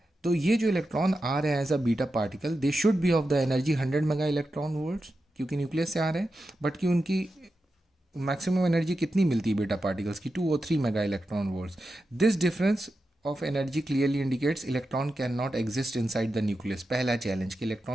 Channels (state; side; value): normal; both; correlation 0.90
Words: तो ये जो इलेक्ट्रॉन आ रहे हैं as a beta particle, they should be of the energy 100 mega electron volts, क्योंकि न्यूक्लियस से आ रहे हैं। बट कि उनकी मैक्सिमम एनर्जी कितनी मिलती है बीटा पार्टिकल्स की, 2 और 3 mega electron volts. This difference of energy clearly indicates electron can not exist inside the nucleus. पहला चैलेंज कि